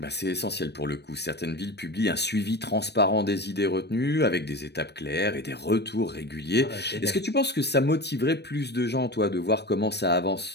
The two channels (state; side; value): late; right; 0.49 ms